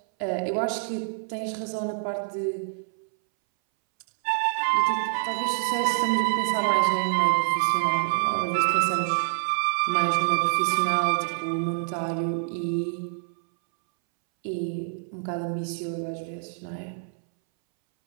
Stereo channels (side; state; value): left; silent; 61 dB below the other